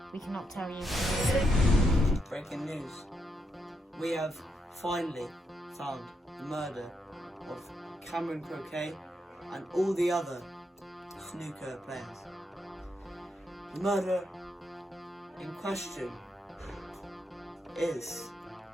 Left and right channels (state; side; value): normal; both; correlation 0.80